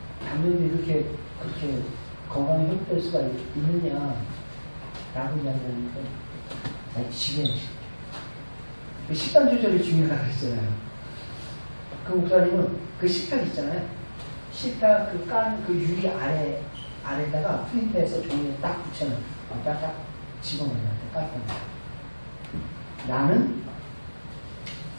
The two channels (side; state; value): both; inverted; correlation -1.00